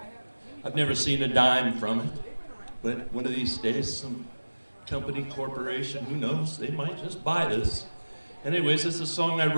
I've never seen a dime from it. But one of these days, some company, corporation, who knows, they might just buy this. Anyways, it's a song I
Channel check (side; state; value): both; inverted; correlation -1.00